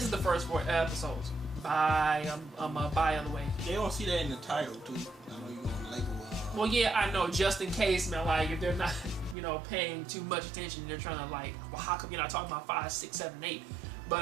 is the first 4 episodes. By the way. They don't see that in the title too. I know you're gonna label. Well, yeah, I know. Just in case, man, like if they're not, you know, paying too much attention, they're trying to like, well, how come you're not talking about 5, 6, 7, 8?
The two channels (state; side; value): drops out; left; at 9.3 s